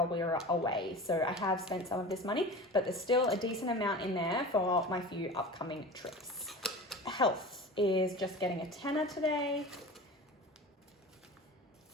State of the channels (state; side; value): normal; both; correlation 0.34